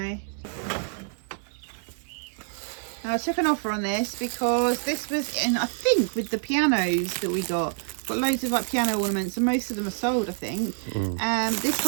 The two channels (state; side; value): silent; left; 60 dB below the other